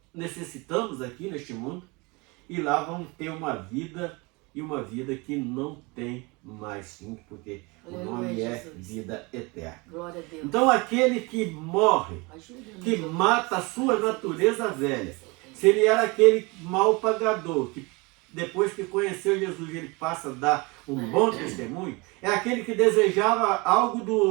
necessitamos aqui neste mundo, e lá vamos ter uma vida, e uma vida que não tem mais fim, porque o nome é vida eterna. Glória a Deus. Então aquele que morre, que mata a sua natureza velha, se ele era aquele mau pagador, que depois que conheceu Jesus ele passa a dar um bom testemunho, é aquele que desejava algo do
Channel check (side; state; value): left; quieter; 26.8 dB